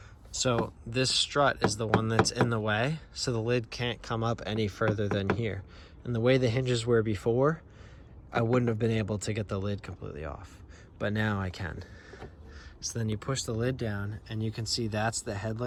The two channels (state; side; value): identical; both; correlation 1.00